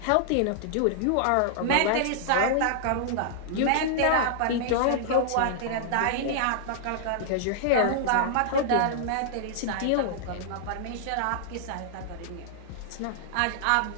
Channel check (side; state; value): both; different; correlation -0.01